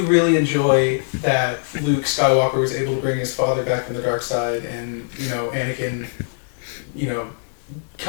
really enjoy that Luke Skywalker was able to bring his father back from the dark side, and Anakin,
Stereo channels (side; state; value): right; silent; digital silence